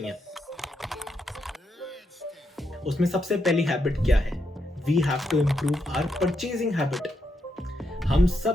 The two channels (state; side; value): normal; both; correlation 0.81